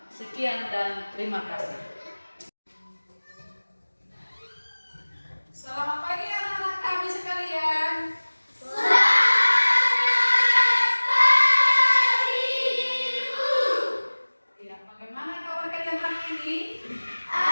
Sekian dan terima kasih. Selamat pagi anak-anak kami sekalian. Selamat pagi, Bu. Ya, bagaimana kabar kalian hari ini?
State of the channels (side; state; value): both; inverted; correlation -1.00